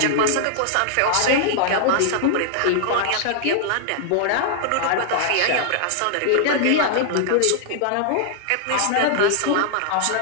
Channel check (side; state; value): both; different; correlation -0.01